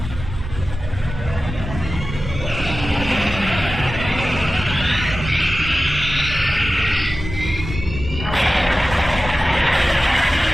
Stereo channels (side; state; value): both; normal; correlation 0.95